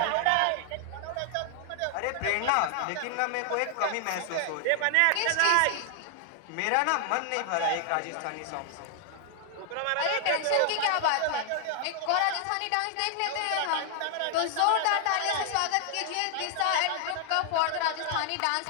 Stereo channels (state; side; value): different; both; correlation 0.00